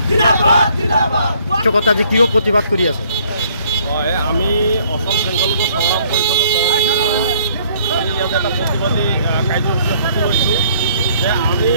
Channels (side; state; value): both; inverted; correlation -0.62